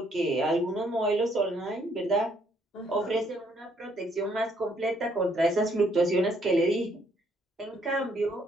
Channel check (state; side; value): normal; both; correlation 0.68